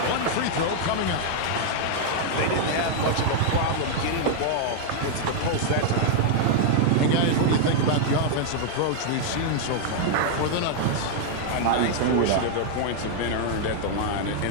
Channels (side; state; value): both; different; correlation -0.01